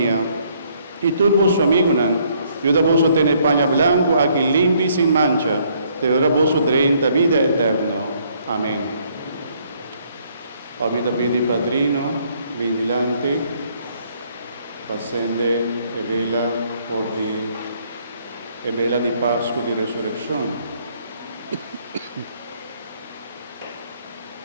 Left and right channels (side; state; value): both; inverted; correlation -0.66